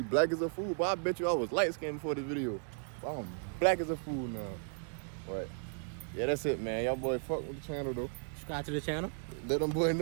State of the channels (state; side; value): silent; left; 54 dB below the other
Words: black as a fool, but I bet you I was light skinned before this video. But I'm black as a fool now. But yeah, that's it, man. Y'all boy fuck with the channel though. Subscribe to the channel. Let them boy